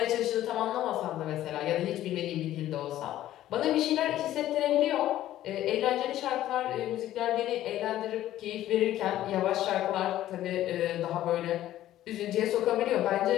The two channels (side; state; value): right; quieter; 13.4 dB